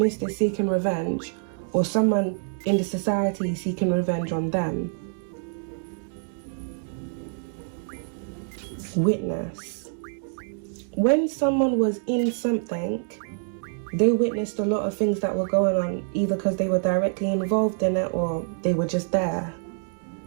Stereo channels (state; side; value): silent; left; digital silence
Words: is seeking revenge, or someone in the society is seeking revenge on them. Witness. When someone was in something, they witnessed a lot of things that were going on, either because they were directly involved in it or they were just there.